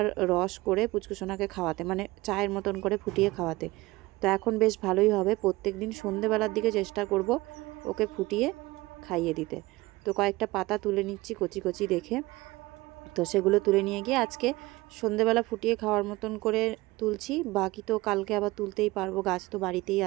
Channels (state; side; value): quieter; left; 20.6 dB